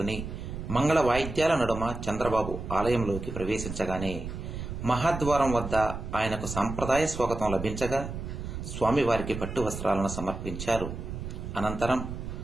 మంగళ వాయిద్యాల నడుమ చంద్రబాబు ఆలయంలోకి ప్రవేశించగానే మహాద్వారం వద్ద ఆయనకు సంప్రదాయ స్వాగతం లభించగా స్వామివారికి పట్టు వస్త్రాలను సమర్పించారు. అనంతరం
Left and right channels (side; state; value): right; noise; rumble, 7 dB below the sound